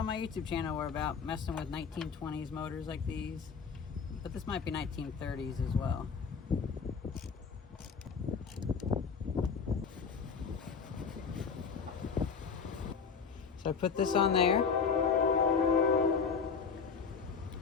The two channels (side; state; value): right; quieter; 5.9 dB